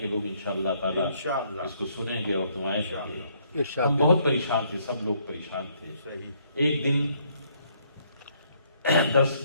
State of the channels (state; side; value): inverted; both; correlation -0.68